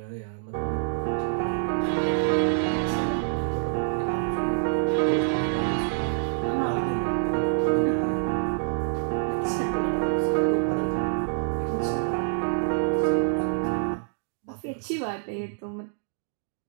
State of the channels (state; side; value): silent; left; digital silence